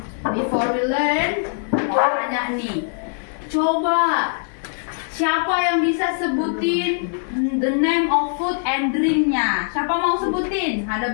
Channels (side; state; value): right; silent; 65 dB below the other